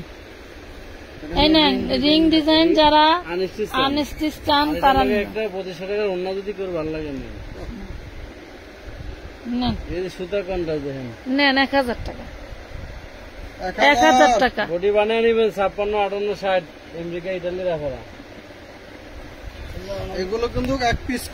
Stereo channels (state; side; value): identical; both; correlation 1.00